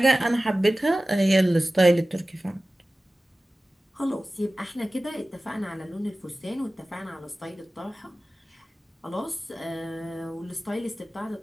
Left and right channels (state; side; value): normal; both; correlation 0.96